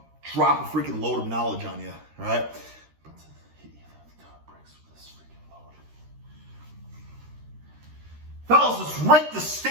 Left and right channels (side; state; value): left; late; 13 ms